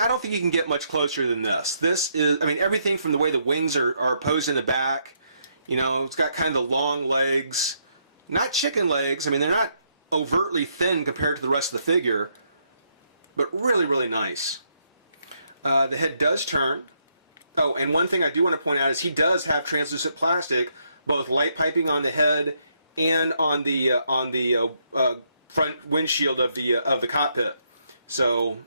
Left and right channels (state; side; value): inverted; both; correlation -0.75